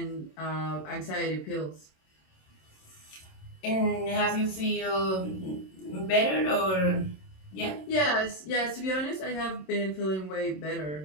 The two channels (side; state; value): right; late; 27 ms